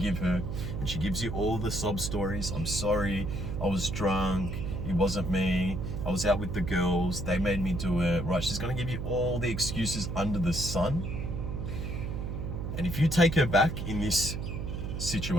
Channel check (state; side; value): noise; right; hum, 4 dB below the sound